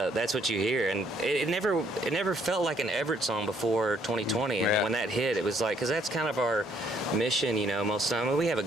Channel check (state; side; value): normal; both; correlation 0.67